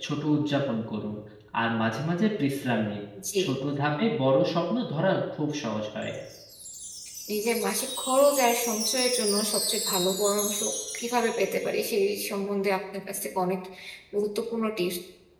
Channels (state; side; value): identical; both; correlation 1.00